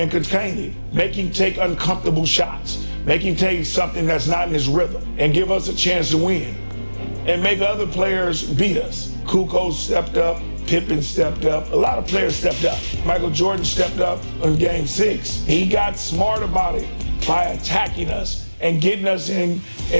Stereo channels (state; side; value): inverted; both; correlation -1.00